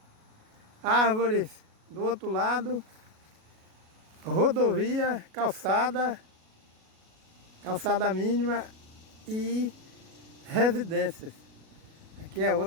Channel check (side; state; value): left; late; 37 ms